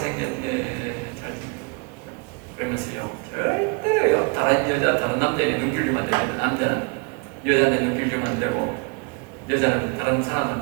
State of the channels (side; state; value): left; quieter; 31.5 dB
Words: 그러면서요. 절대로요. 다른 여자, 다른 남자에게 눈길 주면 안 됩니다. 남자는 여자한테 눈길 주면 안 되고 여자는 다른